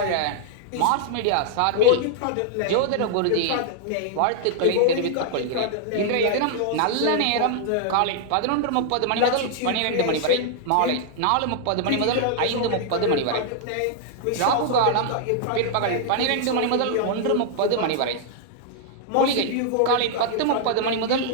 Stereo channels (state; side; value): different; both; correlation -0.01